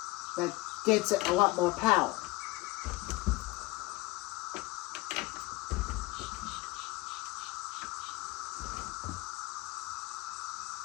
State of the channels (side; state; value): right; quieter; 21.2 dB